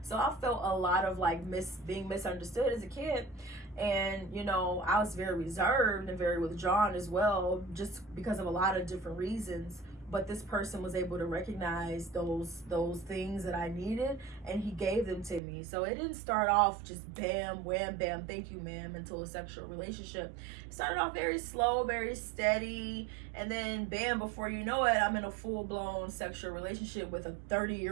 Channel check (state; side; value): drops out; left; at 15.4 s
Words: So I felt a lot of like being misunderstood as a kid. And, you know, I was very reserved and very withdrawn as well, just because of a lot of different reasons. But this person was able to recognize those things that I needed, and he gave them to me. So it didn't start off just bam, wham, bam, thank you, ma'am, until a sexual relationship. It started off very slow, very steady, and then bam, before you know it, I'm in a full-blown sexual relationship with a